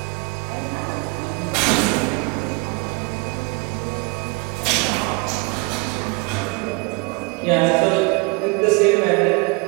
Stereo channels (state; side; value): quieter; left; 28.3 dB